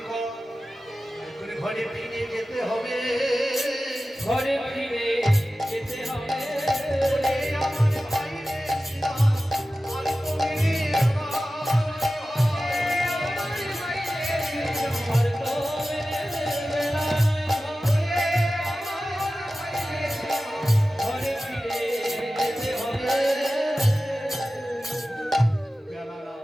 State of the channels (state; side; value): normal; both; correlation 0.95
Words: কর, এখন ঘরে ফিরে যেতে হবে। ঘরে ফিরে যেতে হবে। ওরে আমার ভাই রে ইসলাম, আর তো মেনে আর তো মেনে বেলা ঘরে ফিরে যেতে হবে।